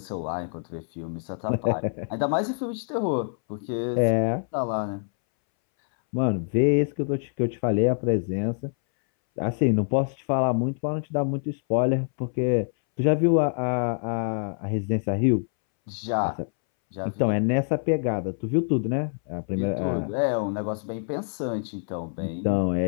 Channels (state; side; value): silent; right; 61 dB below the other